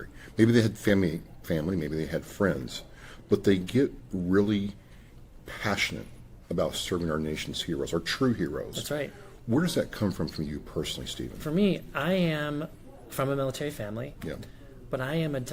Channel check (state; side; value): identical; both; correlation 1.00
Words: Maybe they had family, maybe they had friends, but they get really passionate about serving our nation's heroes, our true heroes. That's right. Where does that come from you personally, Stephen? For me, I am from a military family, yeah, but I am a